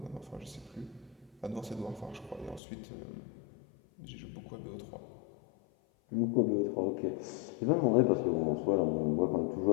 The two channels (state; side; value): drops out; right; at 2.6 s